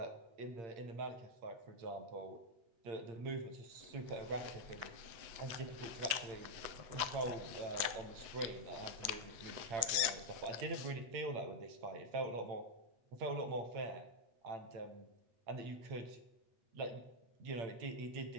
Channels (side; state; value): left; late; 8.1 ms